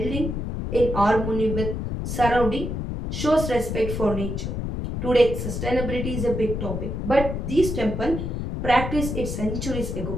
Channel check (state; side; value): noise; left; rumble, 3 dB below the sound